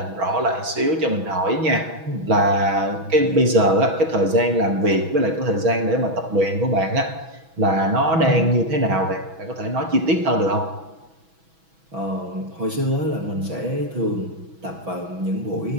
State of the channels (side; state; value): left; late; 6.1 ms